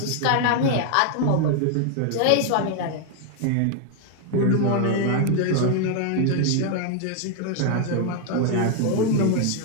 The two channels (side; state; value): both; different; correlation 0.00